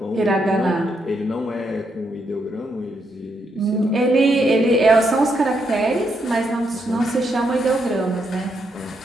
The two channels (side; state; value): both; normal; correlation 0.79